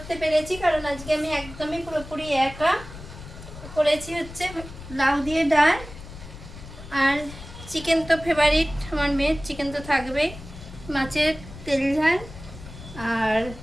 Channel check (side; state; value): left; noise; rumble, 14 dB below the sound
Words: পেরেছি, কারণ আজকে আমি একদমই পুরোপুরি একা করেছি। হচ্ছে লাউ দিয়ে ডাল, আর চিকেন তো ফেভারিট আমার মেয়ের, চিকেন তো থাকবেই, মাছের তেল ঝাল আর